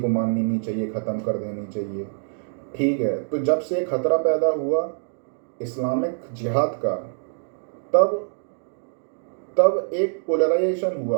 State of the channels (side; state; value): left; silent; digital silence